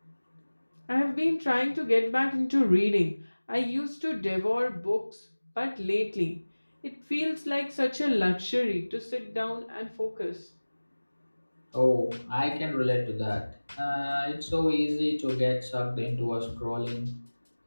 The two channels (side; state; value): both; inverted; correlation -1.00